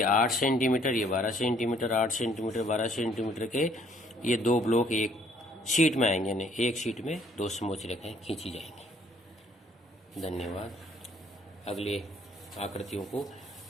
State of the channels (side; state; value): both; normal; correlation 0.62